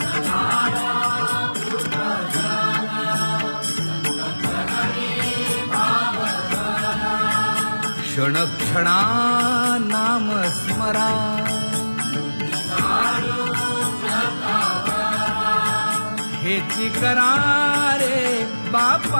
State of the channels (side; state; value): both; inverted; correlation -1.00